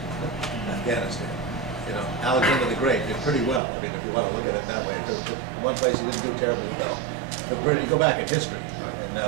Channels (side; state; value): left; drops out; at 3.6 s